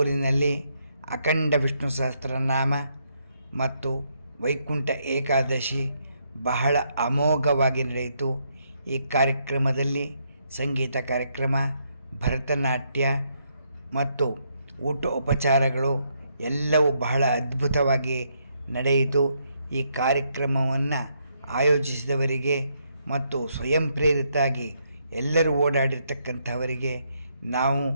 ಅಖಂಡ ವಿಷ್ಣು ಸಹಸ್ರನಾಮ ಮತ್ತು ವೈಕುಂಠ ಏಕಾದಶಿ ಬಹಳ ಅಮೋಘವಾಗಿ ನಡೆಯಿತು. ಈ ಕಾರ್ಯಕ್ರಮದಲ್ಲಿ ಸಂಗೀತ ಕಾರ್ಯಕ್ರಮ, ಭರತನಾಟ್ಯ ಮತ್ತು ಊಟ ಉಪಚಾರಗಳು ಎಲ್ಲವೂ ಬಹಳ ಅದ್ಭುತವಾಗಿ ನಡೆಯಿತು. ಈ ಕಾರ್ಯಕ್ರಮವನ್ನು ಆಯೋಜಿಸಿದವರಿಗೆ ಮತ್ತು ಸ್ವಯಂ ಪ್ರೇರಿತಾಗಿ ಎಲ್ಲರೂ ಓಡಾಡಿರ್ತಕ್ಕಂಥವರಿಗೆ ನಾವು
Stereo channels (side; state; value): both; inverted; correlation -0.75